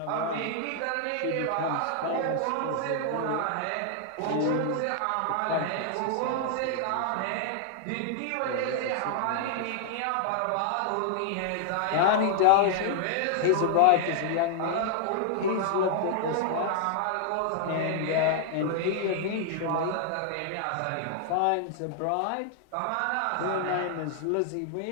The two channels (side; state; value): both; different; correlation -0.01